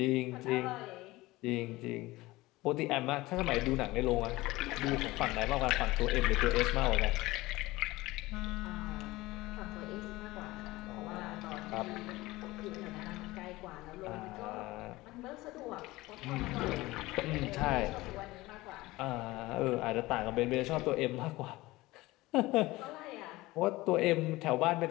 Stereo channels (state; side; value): quieter; right; 19.5 dB